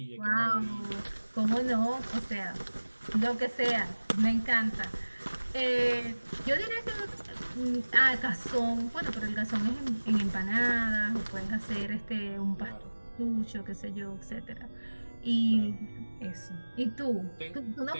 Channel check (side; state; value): both; inverted; correlation -1.00